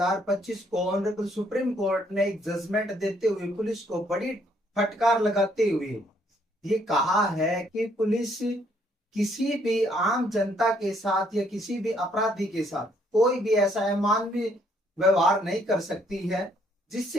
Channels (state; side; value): normal; both; correlation 0.68